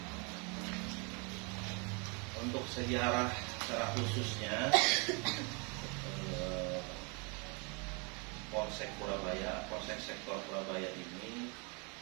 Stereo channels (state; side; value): quieter; left; 32.7 dB